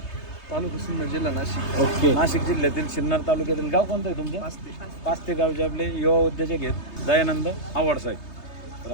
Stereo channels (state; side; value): late; right; 3.3 ms